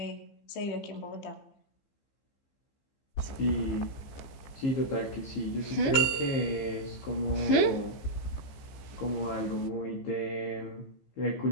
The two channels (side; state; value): right; late; 15 ms